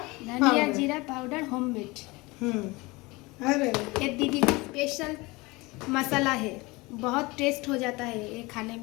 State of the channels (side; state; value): right; quieter; 23.5 dB